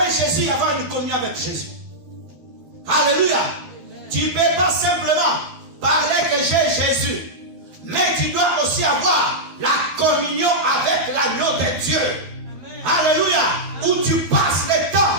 Jésus et avoir une communion avec Jésus. Alléluia. Tu ne peux pas simplement parler que j'ai Jésus, mais tu dois aussi avoir la communion avec l'agneau de Dieu. Alléluia. Où tu passes le temps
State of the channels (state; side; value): late; left; 13 ms